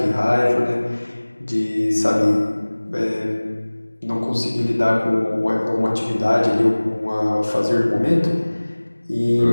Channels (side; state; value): both; inverted; correlation -1.00